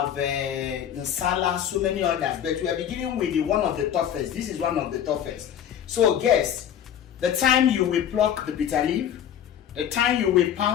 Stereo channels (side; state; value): right; quieter; 9.6 dB